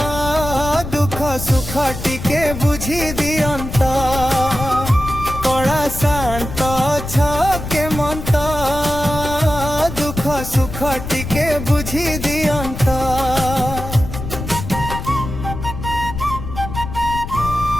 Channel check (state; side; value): noise; left; rumble, 8 dB below the sound